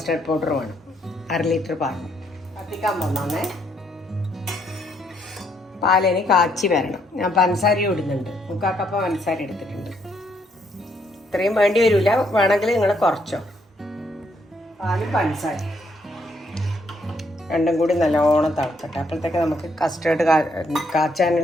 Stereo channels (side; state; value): both; normal; correlation 0.72